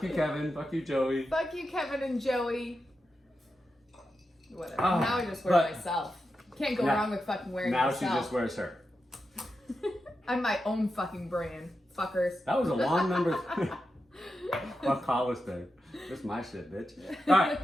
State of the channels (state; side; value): normal; both; correlation 0.89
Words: you, Kevin. Fuck you, Joey." Fuck you, Kevin and Joey. Whatever. Now I just wear myself. Can't go wrong with fucking wearing myself. Now she just wears her. I'm my own fucking brand. Fuckers. That was a long number. Fuck Hollister. This is my shit, bitch. All